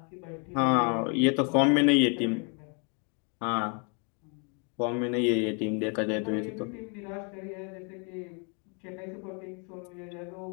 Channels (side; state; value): right; quieter; 36.9 dB